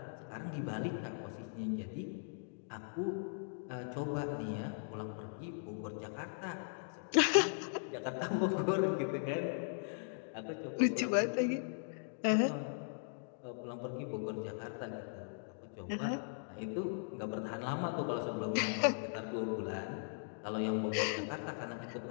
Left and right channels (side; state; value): right; silent; digital silence